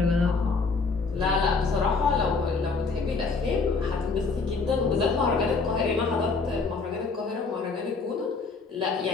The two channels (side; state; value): right; quieter; 4.4 dB